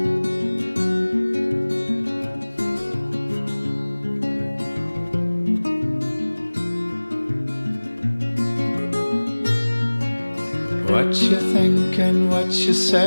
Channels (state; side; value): inverted; both; correlation -1.00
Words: What you think and what you